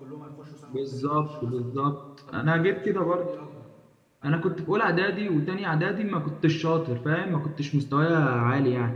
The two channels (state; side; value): identical; both; correlation 1.00